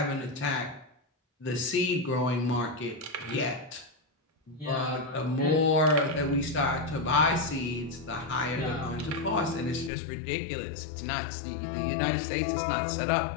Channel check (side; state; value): right; drops out; at 9.9 s